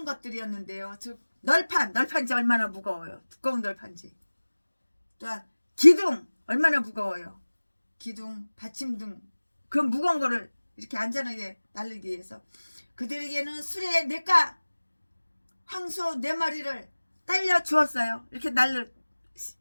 것들이었는데요. 즉 널판지 얼마나 무거워요. 두꺼운 널판지. 또한 기둥 얼마나 무거워요. 기둥, 받침 등 그 무거운 거를 이렇게 안전하게 날리기 위해서 그들에게는 수레 4가 황소 4마리를 딸려 주었어요. 이렇게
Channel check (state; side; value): inverted; both; correlation -1.00